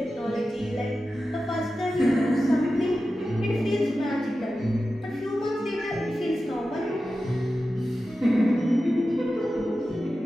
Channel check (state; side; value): normal; both; correlation 0.93